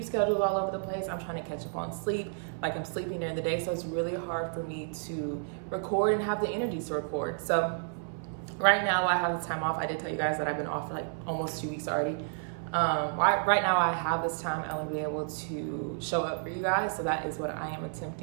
schedule is all over the place. I'm trying to catch up on sleep. Like, I'm sleeping during the day, so it's really hard for me to record and have the energy to record. So right now I have the time off. I did tell you guys that I've been off for like almost 2 weeks already. Right now I have this time, I want to be able to show up for you guys. So that is what I am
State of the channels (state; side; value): silent; left; 57 dB below the other